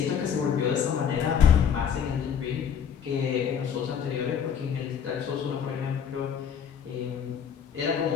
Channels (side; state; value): right; quieter; 7.8 dB